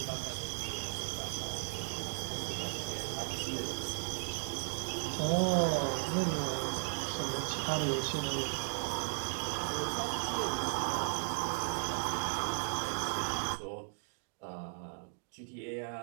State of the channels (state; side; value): silent; left; digital silence